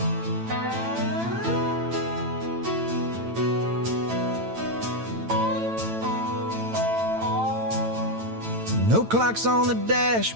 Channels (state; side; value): late; left; 8.9 ms